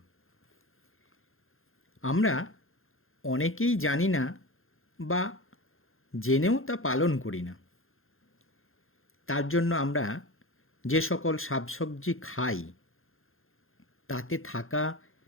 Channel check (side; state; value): right; late; 0.60 ms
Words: আমরা অনেকেই জানি না বা জেনেও তা পালন করি না। তার জন্য আমরা যে সকল শাকসবজি খাই তাতে থাকা